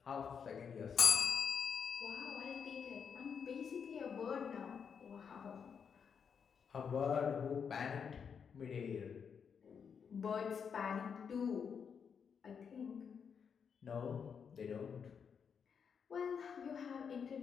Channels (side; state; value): right; quieter; 6.7 dB